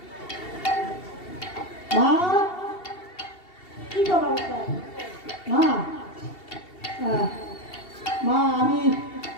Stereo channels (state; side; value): late; right; 2.7 ms